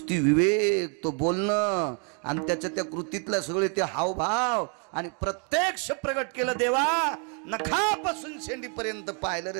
विवेक, तो बोलणं आणि त्याच्या त्या कृतीतलं सगळे ते हावभाव आणि प्रत्यक्ष प्रगट केलं देवा. नखापासून शेंडीपर्यंत पाहिलं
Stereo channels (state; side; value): quieter; left; 38.3 dB